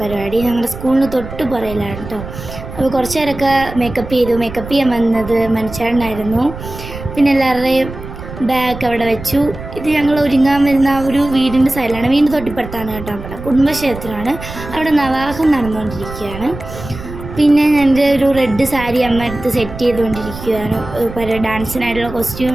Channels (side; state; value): right; noise; rumble, 11 dB below the sound